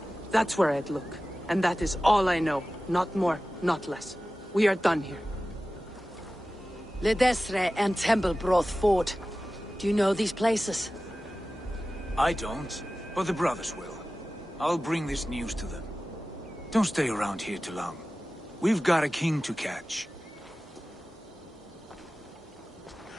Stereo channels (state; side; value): normal; both; correlation 0.96